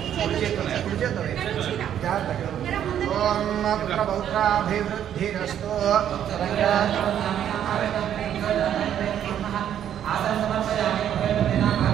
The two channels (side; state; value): left; quieter; 10.0 dB